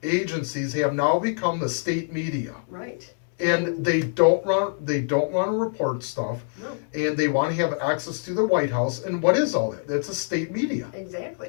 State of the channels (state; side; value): silent; right; digital silence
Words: agencies have now become the state media, Right. and they don't want to report stuff, No, and they want to have access to the White House. And what is all that? That's a state media.